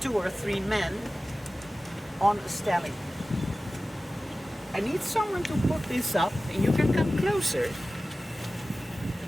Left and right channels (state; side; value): normal; both; correlation 0.96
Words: or 3 men on a stelling. I need someone to put this up, and you can come closer.